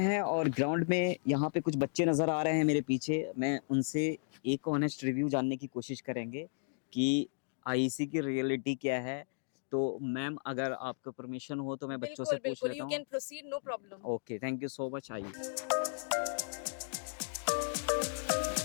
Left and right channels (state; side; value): silent; right; digital silence